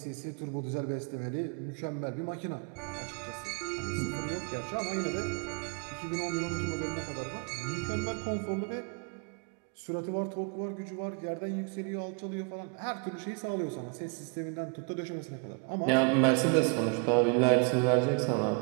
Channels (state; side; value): quieter; left; 35.4 dB